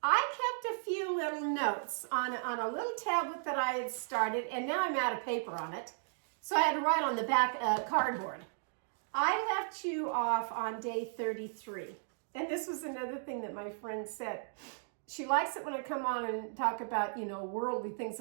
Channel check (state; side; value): silent; left; digital silence